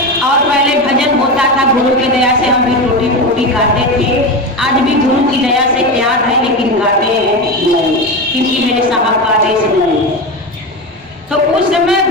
और पहले भजन होता था, गुरु की दया से हम भी टूटी फूटी गाते थे। आज भी गुरु की दया से याद है, लेकिन गाते हैं नहीं, क्योंकि मेरे साहब का आदेश नहीं। तो उस समय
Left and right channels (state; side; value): normal; both; correlation 0.20